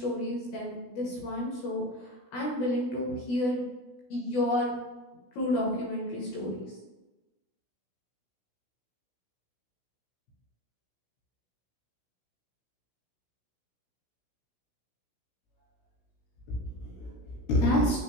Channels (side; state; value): right; late; 16 ms